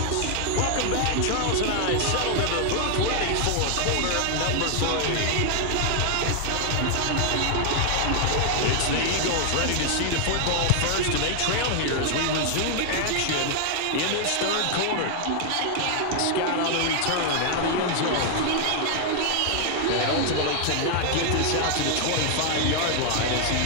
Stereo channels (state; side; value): different; both; correlation 0.00